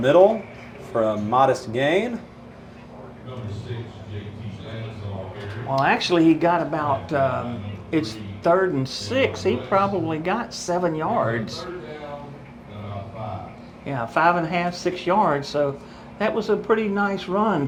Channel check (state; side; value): identical; both; correlation 1.00